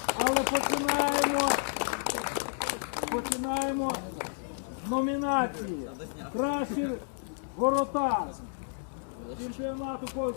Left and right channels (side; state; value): right; silent; digital silence